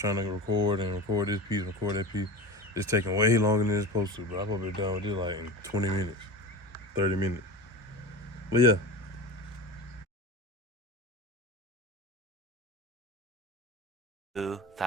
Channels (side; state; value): both; normal; correlation 0.29